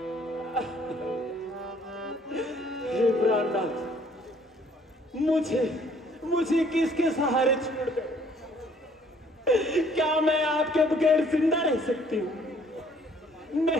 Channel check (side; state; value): both; normal; correlation 0.61